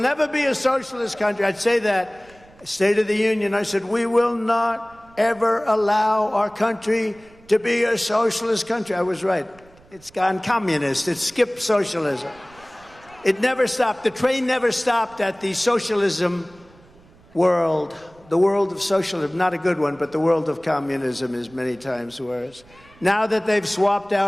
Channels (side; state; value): right; noise; rumble, 27 dB below the sound